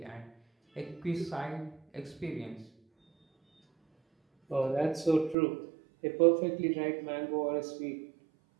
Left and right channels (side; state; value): left; drops out; at 5.4 s